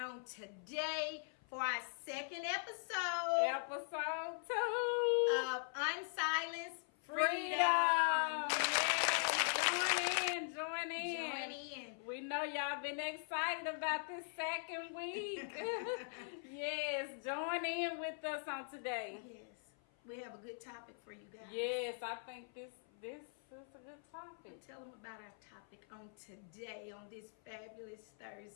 today for our second episode. Episode 2 of Unsilenced Freedom. Join in. We know y'all been excited about this second week. Yes, join in with us on today. Yes, we have a good topic for you guys. Yes, I think this is a good topic. Tell them about our topic on today, on this fabulous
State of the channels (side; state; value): right; silent; 50 dB below the other